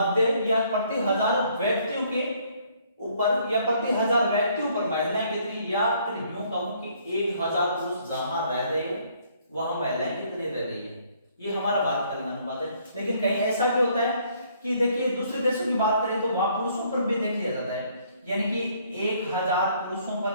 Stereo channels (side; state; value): both; inverted; correlation -0.64